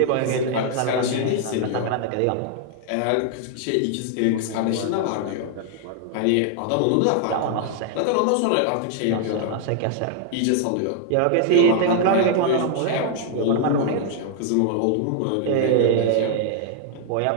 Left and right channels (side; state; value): both; different; correlation 0.00